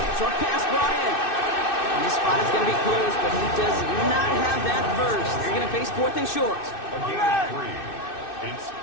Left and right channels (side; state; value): right; late; 2.6 ms